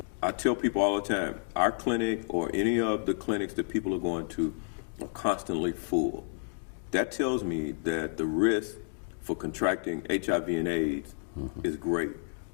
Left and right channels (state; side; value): silent; right; digital silence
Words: I tell people all the time, our clinic or any of the clinics that people are going to are constantly full. That tells me that the risk for contracting HIV and AIDS is great